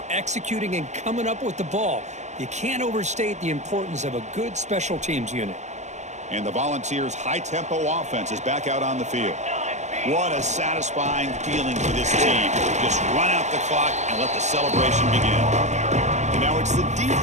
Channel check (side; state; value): left; late; 0.34 ms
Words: executing and coming up with the ball. You can't overstate the importance of a good special teams unit. And the Volunteers' high-tempo offense is back out on the field. What a satisfying feeling for this team. Just run out the clock and let the celebration begin. And now it's the